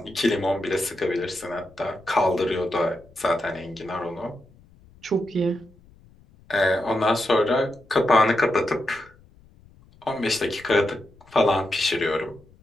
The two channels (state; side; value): noise; left; rumble, 27 dB below the sound